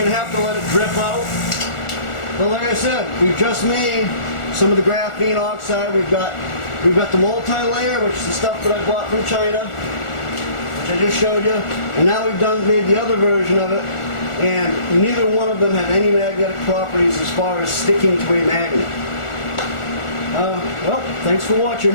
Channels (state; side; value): late; right; 1.4 ms